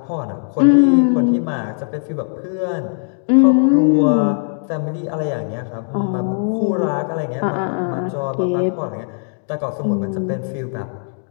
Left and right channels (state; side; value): silent; right; 66 dB below the other